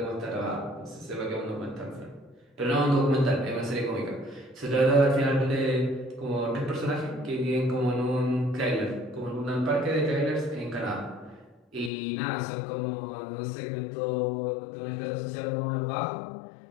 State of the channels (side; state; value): right; drops out; at 11.9 s